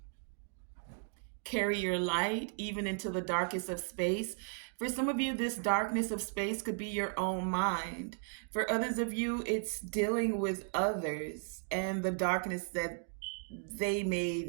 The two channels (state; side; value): silent; left; 54 dB below the other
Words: carry your light even into the darkest of space. For some of you, this darkness of space could be your own mind. For others of you, it's dealing with others and the darkness that they may